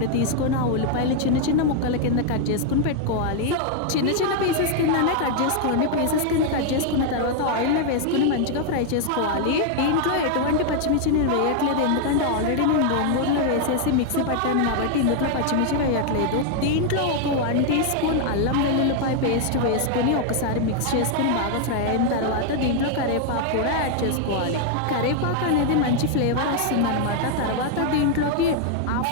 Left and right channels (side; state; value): both; different; correlation 0.00